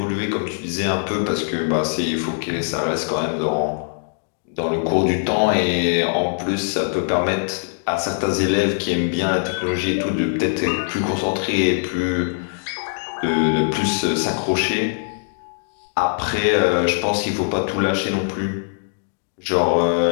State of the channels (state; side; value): silent; right; digital silence